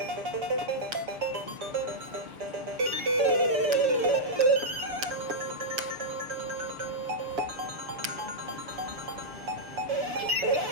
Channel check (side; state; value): left; late; 6.8 ms